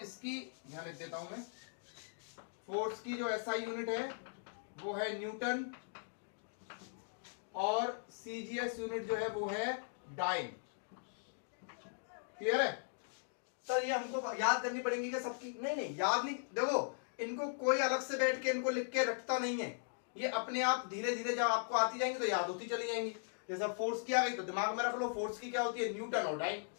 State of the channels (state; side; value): silent; right; digital silence